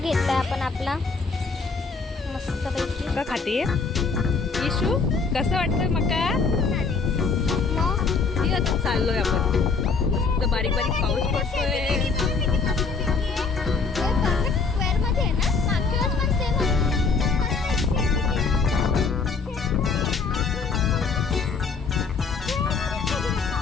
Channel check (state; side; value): quieter; right; 4.7 dB